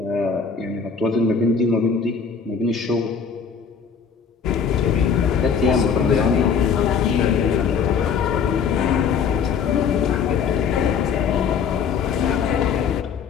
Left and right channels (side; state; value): right; quieter; 6.3 dB